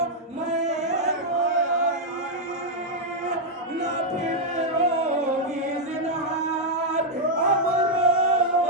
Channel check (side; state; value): both; normal; correlation -0.03